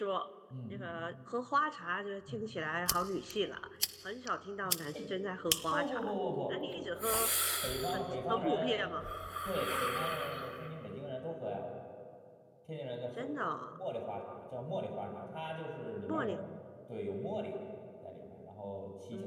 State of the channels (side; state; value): both; identical; correlation 1.00